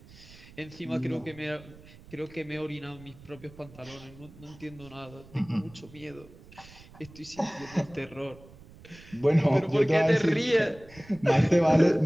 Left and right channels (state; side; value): noise; right; rumble, 21 dB below the sound